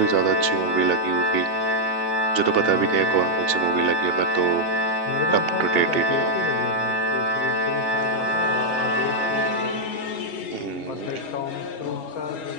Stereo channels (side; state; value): right; late; 3.4 ms